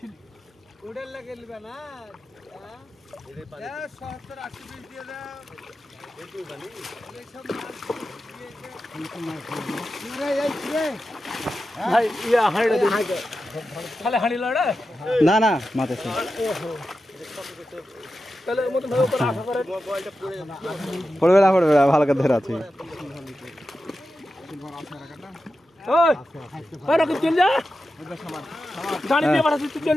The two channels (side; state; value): both; normal; correlation 0.91